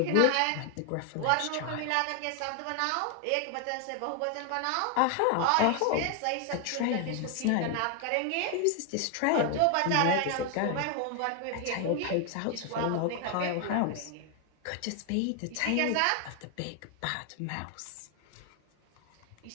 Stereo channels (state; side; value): different; both; correlation 0.00